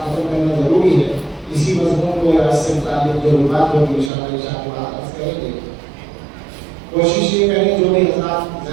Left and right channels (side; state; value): left; drops out; at 4.1 s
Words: ختم کرنا ضروری ہے. اسی مضمون کو یا اس سے متعلق جو بات ہوگی انشاءاللہ عشاء کے بعد عرض کریں گے. کوشش یہ کریں جو بھی حضرات